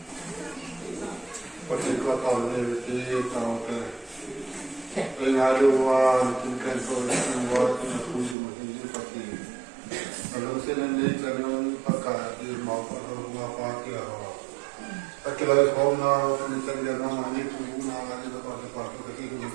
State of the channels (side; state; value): left; drops out; at 8.3 s